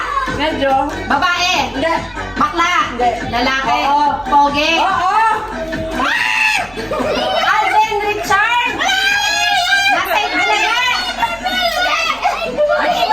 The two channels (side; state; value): right; noise; rumble, 25 dB below the sound